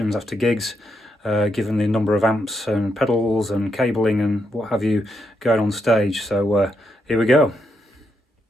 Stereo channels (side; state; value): both; normal; correlation 0.81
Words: after gigs, given the number of amps and pedals and cabling and what have you going on stage. So here we go.